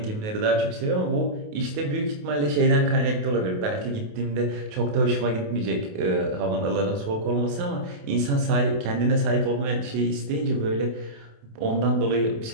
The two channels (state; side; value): late; left; 28 ms